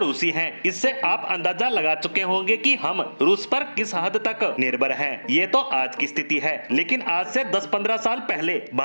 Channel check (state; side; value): inverted; both; correlation -1.00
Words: हैं। इससे आप अंदाजा लगा चुके होंगे कि हम रूस पर किस हद तक निर्भर हैं। ये तो आज की स्थिति है, लेकिन आज से 10-15 साल पहले